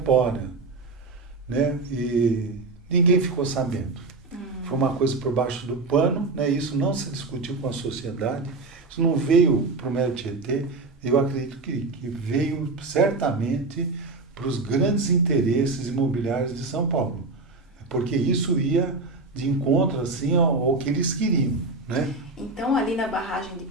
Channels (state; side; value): quieter; left; 3.6 dB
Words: né? E ninguém ficou sabendo. Foi uma coisa por baixo do pano, né? Isso não se discutiu com a sociedade, isso não veio para o Mero Tietê. Eu acredito que veio certamente para os grandes interesses imobiliários de São Paulo, porque isso ia de encontro assim ao que eles queriam, né? Então, ali na barragem de